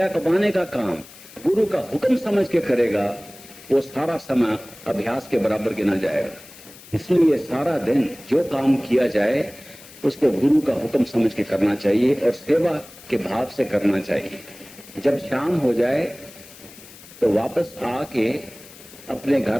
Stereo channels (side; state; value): left; noise; hiss, 20 dB below the sound